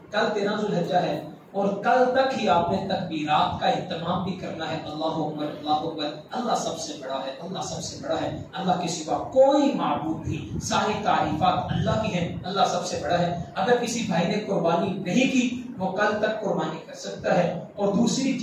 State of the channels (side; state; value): both; identical; correlation 1.00